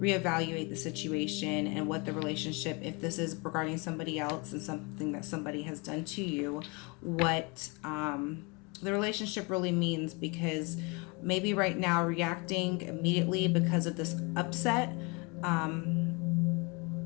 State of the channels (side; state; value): right; quieter; 29.6 dB